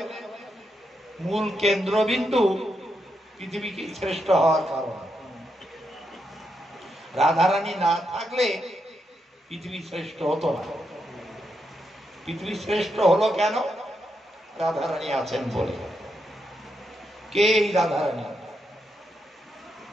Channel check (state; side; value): normal; both; correlation 0.82